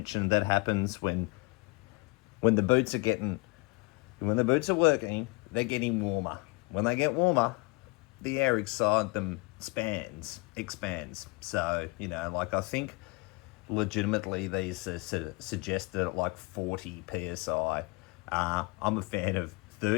that happens when the boots are working, they're getting warmer. When they get warmer, the air inside them expands. So, I think legitimately these are suggested at like 40 psi. I'm a fan of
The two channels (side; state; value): right; quieter; 26.6 dB